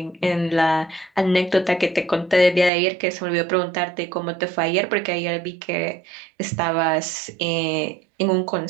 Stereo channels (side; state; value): left; drops out; at 2.7 s